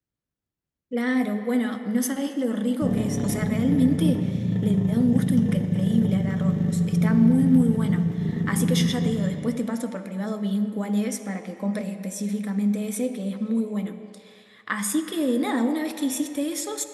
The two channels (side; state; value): both; identical; correlation 1.00